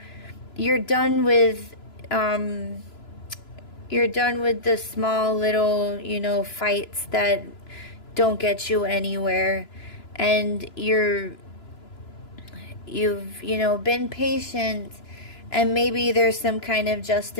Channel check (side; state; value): right; late; 2.9 ms